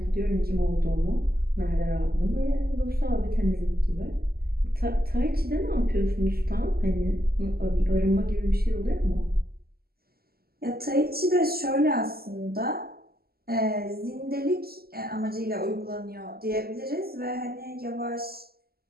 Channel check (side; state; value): left; late; 0.45 ms